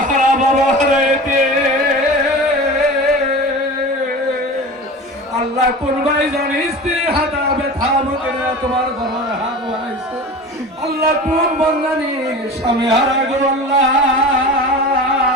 হারা বাবা হারাইতে আল্লাহ কোন ভাই জানি স্ত্রী হাতা ব্যথা মুখে তোমার দরবারে হাত বাড়াইছে আল্লাহ কোন বন্দানি স্বামী হারা গো আল্লাহ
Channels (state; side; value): normal; both; correlation 0.34